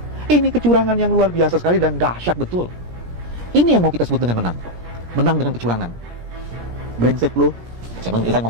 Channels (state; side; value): late; left; 17 ms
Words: Ini kecurangan yang luar biasa sekali dan dahsyat betul. Ini yang mau kita sebut dengan menang. Menang dengan kecurangan. Brengsek lo. Saya